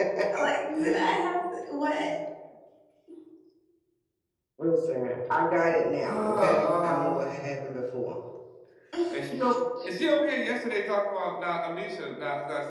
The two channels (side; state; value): both; identical; correlation 1.00